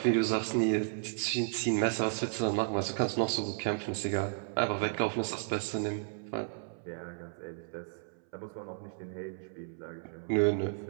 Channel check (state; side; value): silent; left; 56 dB below the other